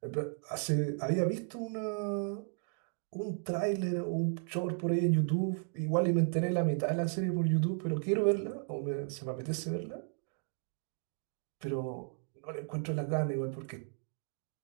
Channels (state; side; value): silent; left; 55 dB below the other